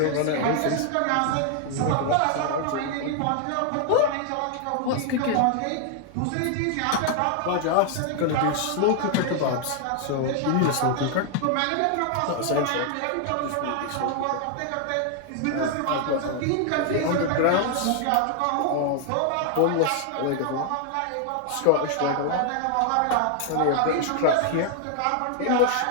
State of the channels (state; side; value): different; both; correlation 0.00